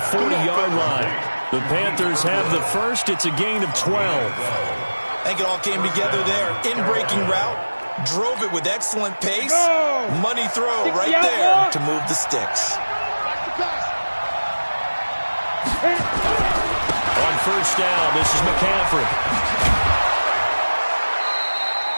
40-yard line. The Panthers have the first. It's a gain of 12. I think it all came together there. In-breaking route. Drove it with excellent pace. Money throw right there to move the sticks. On first down, this is McCaffrey.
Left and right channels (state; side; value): inverted; both; correlation -1.00